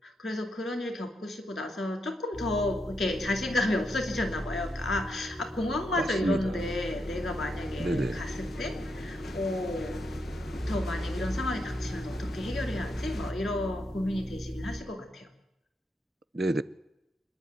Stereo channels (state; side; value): normal; both; correlation 0.81